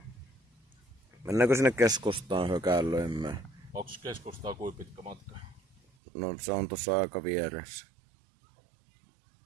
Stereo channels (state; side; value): drops out; left; at 5.8 s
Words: Mennäänkö sinne keskustaan hökäilöimään? Onks keskustaa kuin pitkä matka? No se on tuossa aika vieressä.